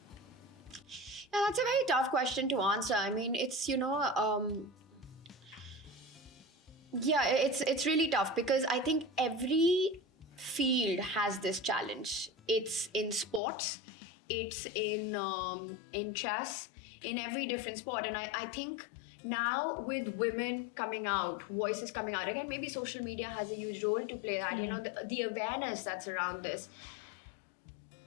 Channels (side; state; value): right; drops out; at 13.4 s